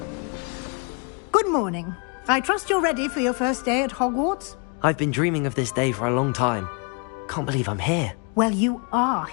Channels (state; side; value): quieter; right; 36.1 dB